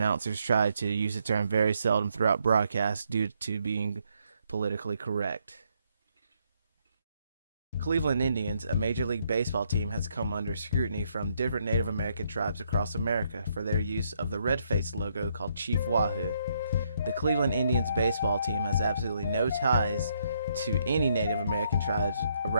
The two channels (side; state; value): both; inverted; correlation -0.73